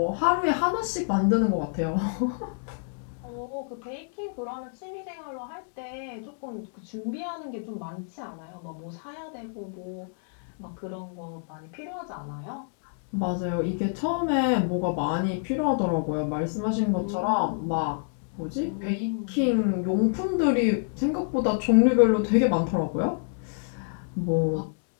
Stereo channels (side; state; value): right; silent; digital silence